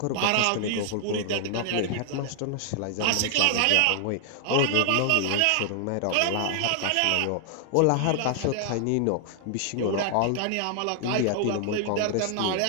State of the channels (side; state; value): both; different; correlation 0.00